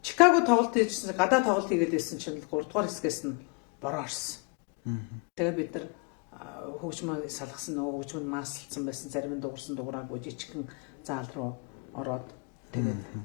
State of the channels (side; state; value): right; quieter; 31.7 dB